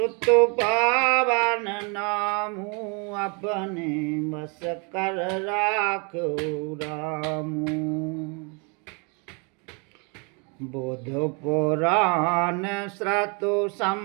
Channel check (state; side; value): quieter; left; 33.8 dB